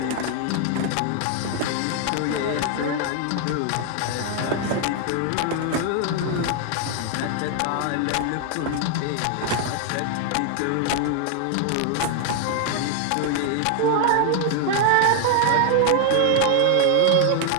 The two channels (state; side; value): different; both; correlation 0.00